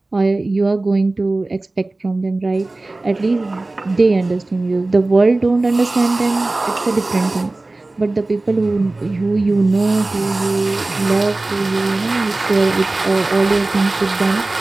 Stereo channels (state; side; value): quieter; left; 3.0 dB